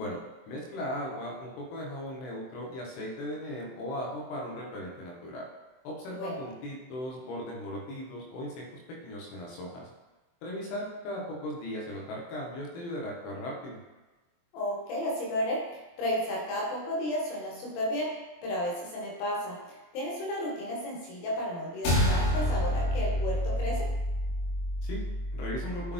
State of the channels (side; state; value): right; late; 23 ms